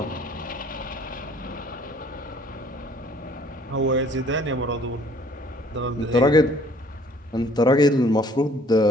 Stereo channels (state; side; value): normal; both; correlation 0.58